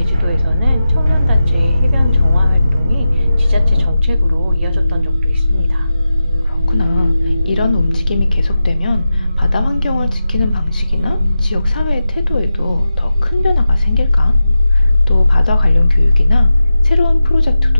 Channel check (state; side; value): inverted; both; correlation -0.92